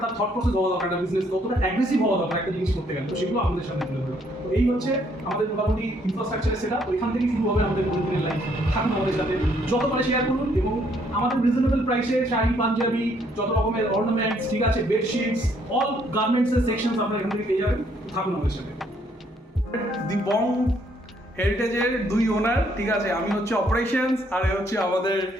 তার থট প্রসেস হওয়া দরকার, একটা বিজনেস কতটা অ্যাগ্রেসিভ হওয়া দরকার একটা জিনিস করতে গেলে, তো সেগুলো আমাদের সামনে তুলে ধরো। তো এই হচ্ছে আমাদের মোটামুটি ইনফ্রাস্ট্রাকচারের সেটা, তো এখান থেকেই শুরু হবে আমাদের প্রতিদিনের লাইফ। থাকুন আমাদের সাথে, যত পারে শেয়ার করুন, এবং আমাদের রিজনেবল প্রাইসে শাড়ি, পাঞ্জাবি, যত রকমের অর্নামেন্টস, ঠিক আছে, বেডশিটস, অল গার্মেন্টসের সেকশনস আপনারা এখান থেকে পেয়ে যাবেন। থাকুন আমাদের সাথে। দি বং হেরিটেজের দুই ওনার, ঠিক আছে, আমি হচ্ছে অপারেশনস, আর এ হচ্ছে আমাদের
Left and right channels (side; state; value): both; normal; correlation 0.68